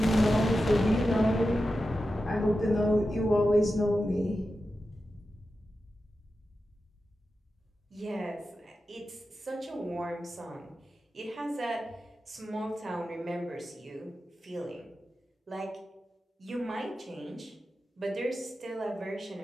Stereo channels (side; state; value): both; normal; correlation 0.91